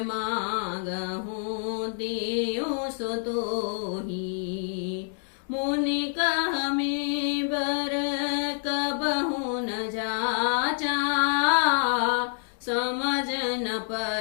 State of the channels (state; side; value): silent; right; 56 dB below the other